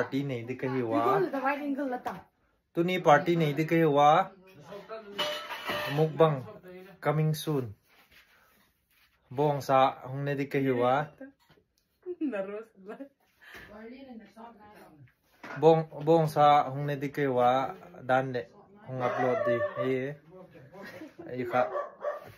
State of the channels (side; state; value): both; identical; correlation 1.00